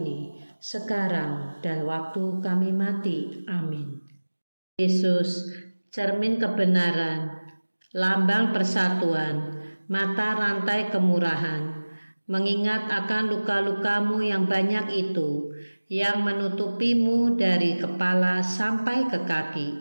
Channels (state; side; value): inverted; both; correlation -1.00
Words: sekarang dan waktu kami mati. Amin. Yesus, cermin kebenaran, lambang persatuan, mata rantai kemurahan, mengingat akan luka-lukamu yang banyak itu, yang menutupimu dari kepala sampai ke kaki,